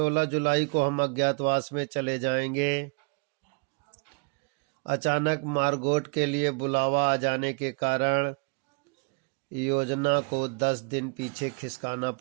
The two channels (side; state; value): left; quieter; 33.5 dB